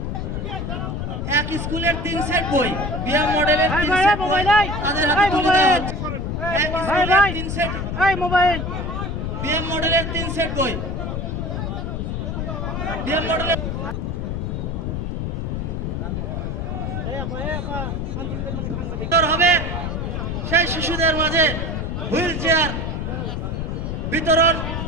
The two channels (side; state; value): left; noise; rumble, 2 dB below the sound